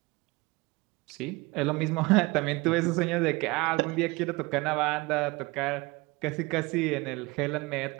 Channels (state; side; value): quieter; left; 23.7 dB